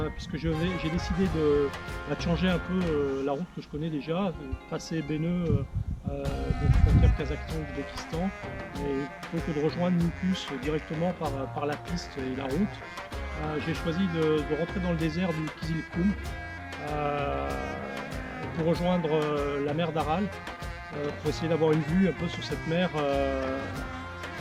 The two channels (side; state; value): both; identical; correlation 1.00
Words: puisque j'ai décidé de changer un peu la route que je connais déjà, passer Béneu donc frontière Kazakhstan-Ouzbékistan, et plutôt que de rejoindre Nukus directement par la piste et la route, j'ai choisi de rentrer dans le désert du Kizilkum pour rejoindre la mer d'Aral, pour essayer d'avoir une vue un peu sur cette mer,